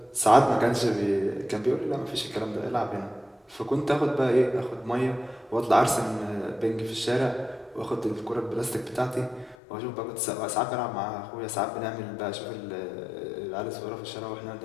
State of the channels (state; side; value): drops out; right; at 9.6 s